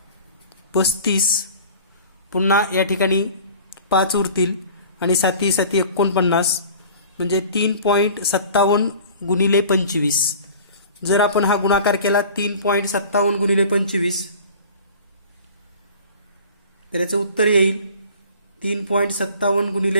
35, पुन्हा या ठिकाणी 5 उरतील आणि 7 7 49, म्हणजे 3.57 गुणिले 25. जर आपण हा गुणाकार केला 3.57 गुणिले 25 तर याचं उत्तर येईल 3.57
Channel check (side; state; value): both; inverted; correlation -0.44